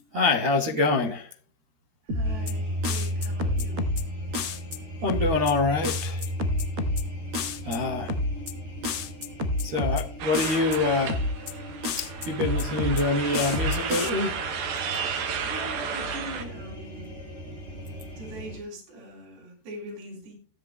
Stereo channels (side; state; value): left; late; 13 ms